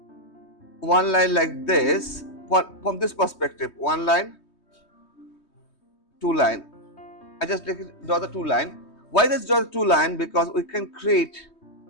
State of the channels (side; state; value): right; late; 3.2 ms